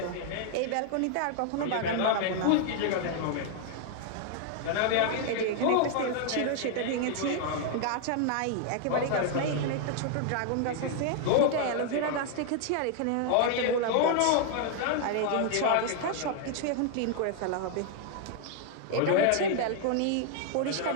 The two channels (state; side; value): different; both; correlation 0.00